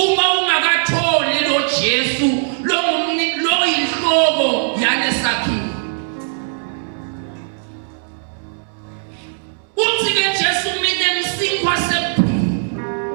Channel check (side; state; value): left; silent; digital silence